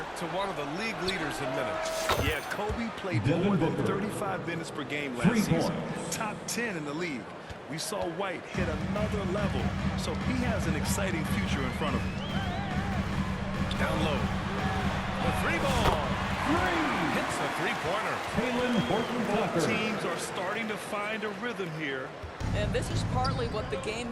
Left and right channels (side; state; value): both; identical; correlation 1.00